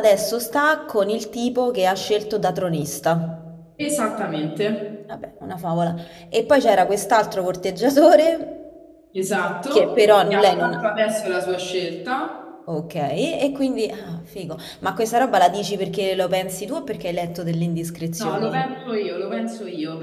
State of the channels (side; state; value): both; identical; correlation 1.00